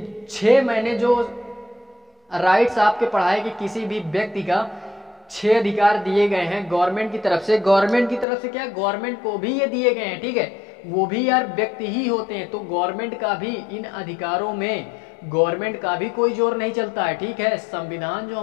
6 मैंने जो राइट्स आपके पढ़ाए कि किसी भी व्यक्ति का 6 अधिकार दिए गए हैं गवर्नमेंट की तरफ से। गवर्नमेंट की तरफ से क्या, गवर्नमेंट को भी ये दिए गए हैं, ठीक है, वो भी यार व्यक्ति ही होते हैं, तो गवर्नमेंट का भी इन अधिकारों में गवर्नमेंट का भी कोई जोर नहीं चलता है, ठीक है। संविधान जो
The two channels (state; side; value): drops out; right; at 8.2 s